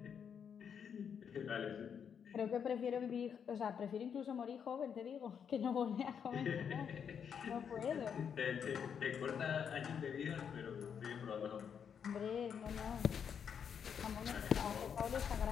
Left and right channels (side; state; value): right; quieter; 7.5 dB